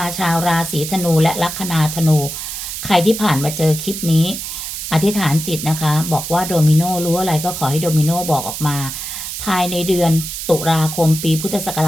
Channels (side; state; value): right; noise; hiss, 7 dB below the sound